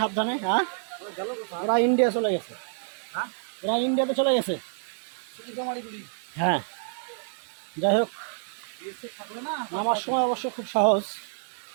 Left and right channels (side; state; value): left; silent; 59 dB below the other